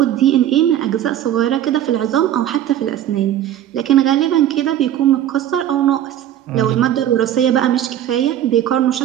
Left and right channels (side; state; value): left; quieter; 11.4 dB